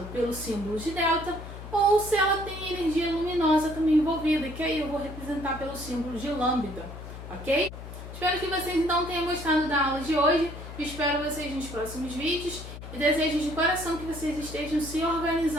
pelo símbolo de delta, ou se ela tem energia luminosa também envolvida, que aí eu vou representar pelo símbolo de lambda, ok? Espero que vocês então tenham gostado da aula de hoje, espero vocês nos próximos vídeos e desejo de coração que vocês estejam se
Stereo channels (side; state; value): left; noise; hum, 11 dB below the sound